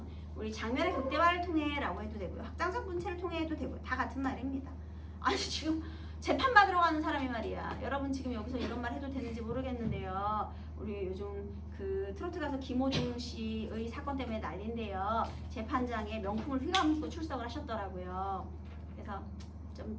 우리 장면의 극대화를 통해라고 해도 되고요. 확장적 문체를 통해 해도 되고요. 다 같은 말입니다. 아니 지금 재판 받으러 가는 사람이 말이야. 여러분 지금 여기서 이런 말 해도 되는지 모르겠는데요. 우리 요즘 그 트로트 가수 김호중 씨의 사건 때문에 난리인데요. 재판장에 명품을 휘감고 출석을 하셨더라고요. 그래서 좀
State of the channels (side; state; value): both; identical; correlation 1.00